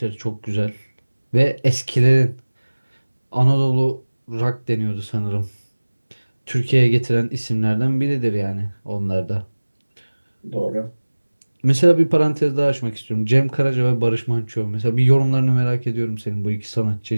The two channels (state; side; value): inverted; both; correlation -1.00